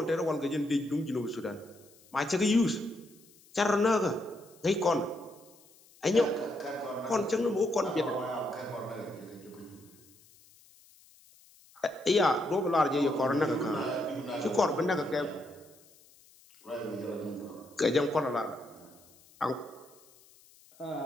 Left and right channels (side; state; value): left; noise; hiss, 27 dB below the sound